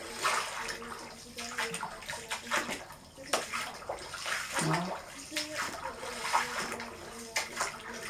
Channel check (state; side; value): identical; both; correlation 1.00